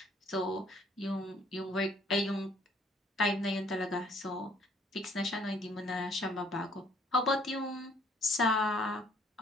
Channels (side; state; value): both; normal; correlation 0.61